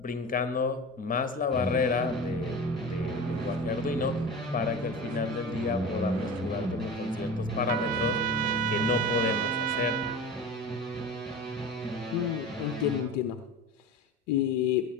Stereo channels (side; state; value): both; normal; correlation 0.32